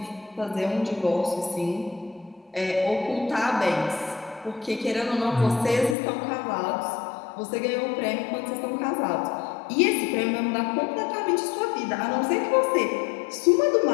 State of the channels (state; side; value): drops out; right; at 6.0 s